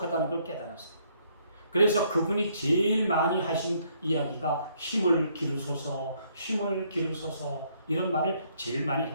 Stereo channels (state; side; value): inverted; both; correlation -0.68